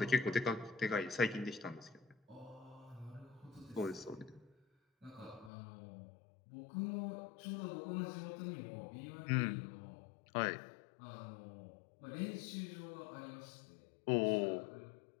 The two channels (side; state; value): right; drops out; at 5.5 s